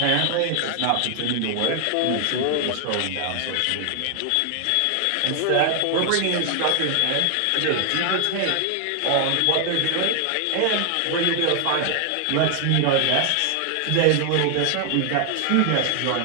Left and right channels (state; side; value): different; both; correlation 0.00